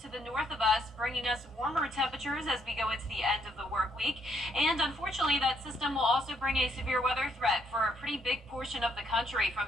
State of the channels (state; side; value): normal; both; correlation 0.72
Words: to the north of us, bringing us warmer temperatures as we go into the end of the work week. And unfortunately, that system will also bring a severe weather threat for a pretty big portion of the country, from